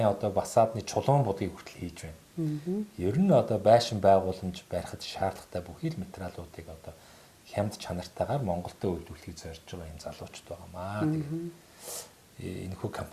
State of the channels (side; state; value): both; identical; correlation 1.00